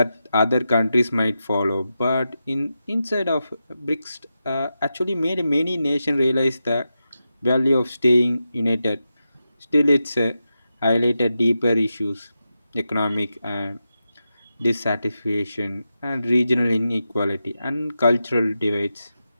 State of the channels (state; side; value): inverted; both; correlation -0.89